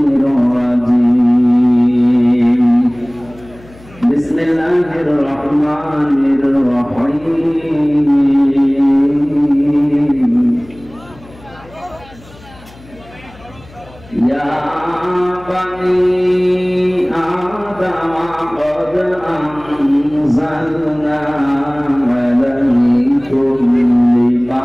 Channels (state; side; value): noise; left; hum, 22 dB below the sound